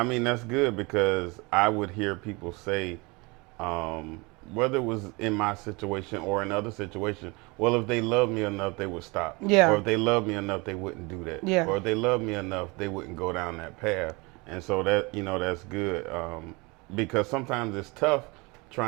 mean, that's good, because I would hear people say, whether it was in my situation or in other situations, well, if they love me enough, they would stop. Yeah. Or if they love me enough, they wouldn't do that. Yeah. Or if they love me enough, they wouldn't go down that path. And so that, that's good. Because sometimes it's tough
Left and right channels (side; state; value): left; quieter; 26.7 dB